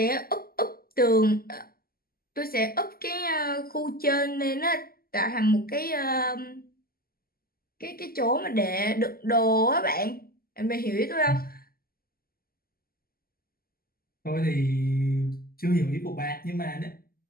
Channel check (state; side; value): late; right; 0.43 ms